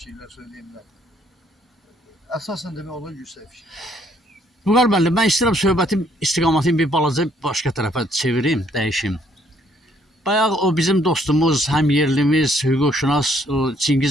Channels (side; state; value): both; normal; correlation 0.67